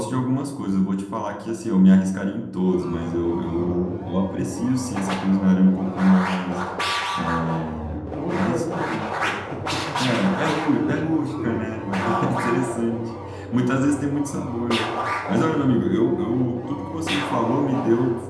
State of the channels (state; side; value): identical; both; correlation 1.00